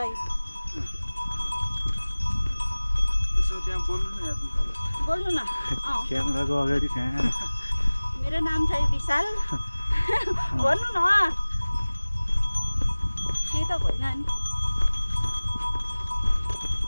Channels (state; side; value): inverted; both; correlation -1.00